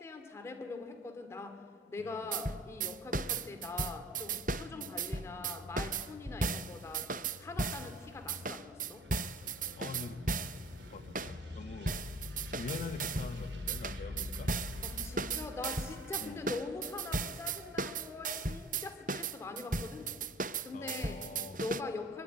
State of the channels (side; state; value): both; normal; correlation 0.48